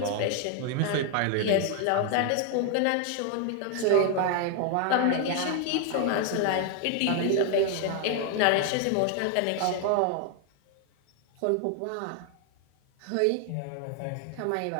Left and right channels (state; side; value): different; both; correlation 0.01